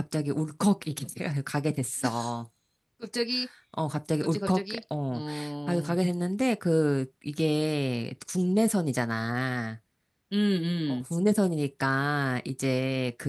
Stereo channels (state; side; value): identical; both; correlation 1.00